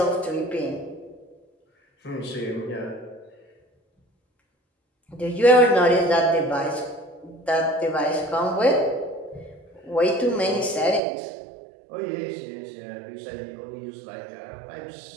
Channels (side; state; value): left; drops out; at 11.0 s